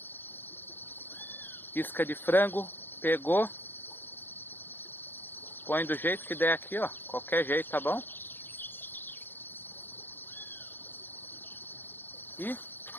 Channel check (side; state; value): right; late; 0.090 ms